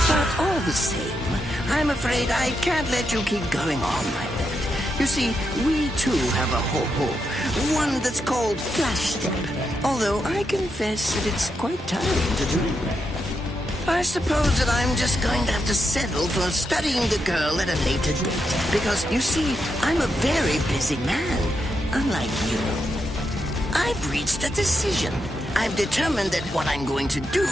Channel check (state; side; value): normal; both; correlation 0.84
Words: But All the same, I'm afraid I can't let you keep going on like that. You see, we too have a ho-ho, one that's called Flash Step, although I confess that it's quite tiring to do. I suppose that I'm just going to have to settle for studying the girl at a later date, because, you see, I'm a very busy man, unlike you. I've reached a decision. I've determined that what I'm going to do